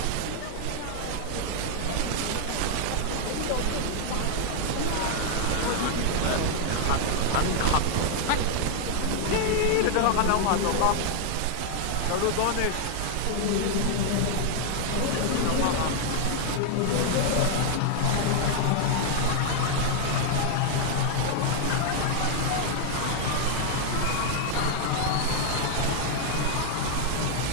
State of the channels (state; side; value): different; both; correlation 0.00